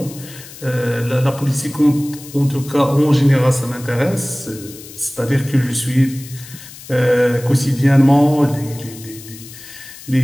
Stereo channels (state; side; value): noise; left; hiss, 17 dB below the sound